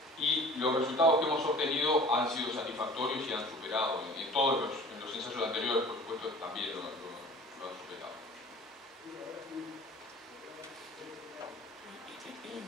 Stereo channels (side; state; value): both; normal; correlation 0.44